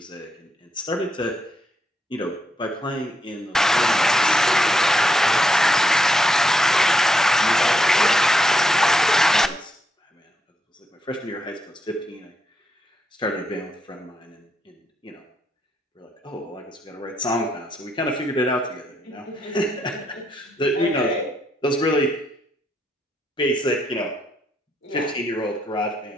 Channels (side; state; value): both; normal; correlation 0.79